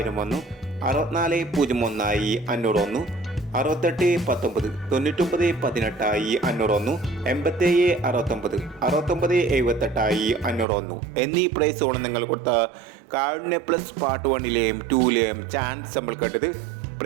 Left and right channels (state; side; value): drops out; left; at 10.7 s